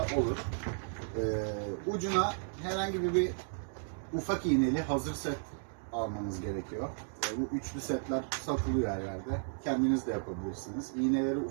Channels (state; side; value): silent; left; digital silence